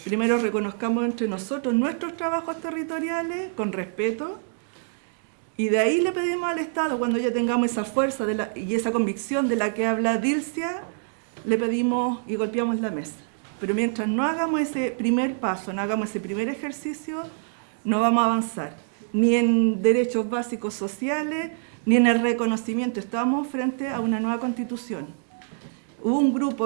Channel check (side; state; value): left; silent; digital silence